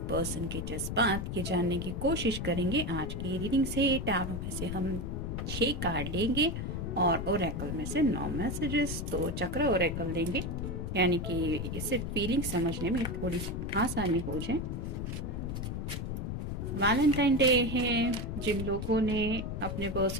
पर्सन के जज्बात, ये जानने की कोशिश करेंगे आज की रीडिंग से। टैरो में से हम 6 कार्ड लेंगे और ओरेकल में से 9 मैसेजेस। तो चक्र ओरेकल लेंगे, यानी कि इससे फीलिंग समझने में थोड़ी आसानी हो जाए। वैलेंटाइन डे है, जिन लोगों ने अपने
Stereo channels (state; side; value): noise; left; rumble, 4 dB below the sound